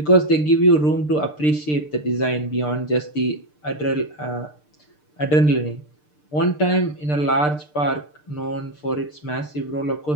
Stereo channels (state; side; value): late; right; 6.7 ms